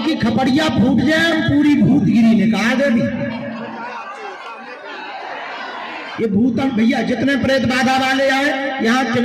की खपड़िया फूट जाए, पूरी भूतगिरी निकाल दे दी। ये भूतन भैया जितने प्रेत बाधा वाले आए यहाँ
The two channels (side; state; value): both; identical; correlation 1.00